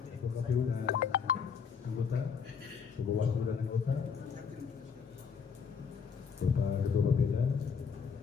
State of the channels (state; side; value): quieter; right; 6.2 dB